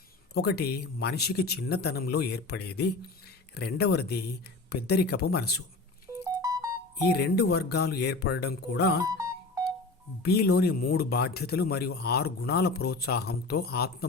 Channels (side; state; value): right; quieter; 3.5 dB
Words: 1 మనిషికి చిన్నతనంలో ఏర్పడేది, 2వది పెద్దరికపు మనసు. ఈ 2 వర్గాలు ఏర్పడడం కూడా బీలోని 3 బాధ్యతలు మరియు 6 గుణాల ప్రోత్సాహంతో ఆత్మ